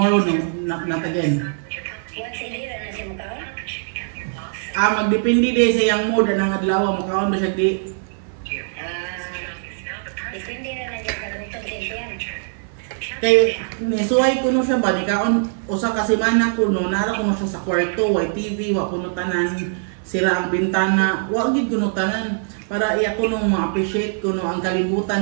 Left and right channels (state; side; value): silent; left; 60 dB below the other